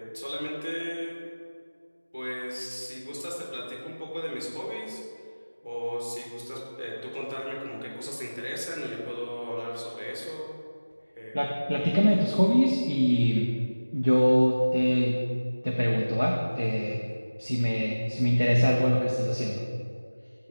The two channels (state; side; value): inverted; both; correlation -1.00